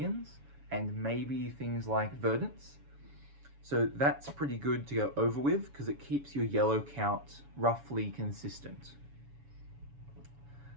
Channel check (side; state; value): left; late; 7.1 ms